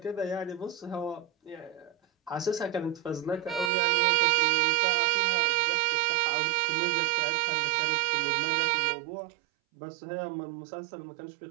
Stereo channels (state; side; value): drops out; left; at 3.7 s